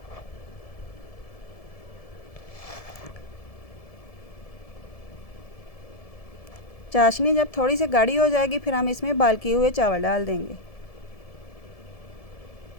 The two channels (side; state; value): right; late; 1.7 ms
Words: चाशनी जब थोड़ी सी गाढ़ी हो जाएगी, फिर हम इसमें बॉयल किए हुए चावल डाल देंगे।